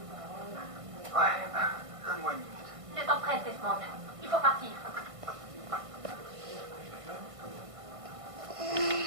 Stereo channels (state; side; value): late; left; 1.5 ms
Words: Ouais, donne-moi une minute. Le temps presse, Desmond. Il faut partir.